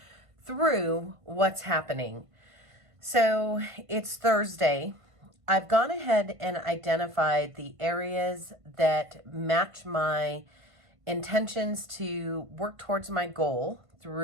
through what's happening. So it's Thursday. I've gone ahead and identified the areas that match my intentions to work towards my goal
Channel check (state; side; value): late; left; 1.5 ms